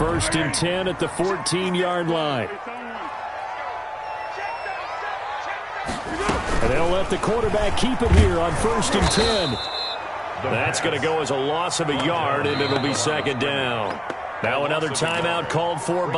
and 10 at the 14-yard line. And they'll let the quarterback keep it here on 1st and 10. That's going to go as a loss of a yard, and it'll be 2nd down. Now another timeout called for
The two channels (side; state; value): both; identical; correlation 1.00